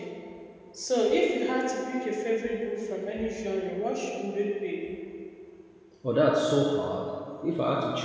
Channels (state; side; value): identical; both; correlation 1.00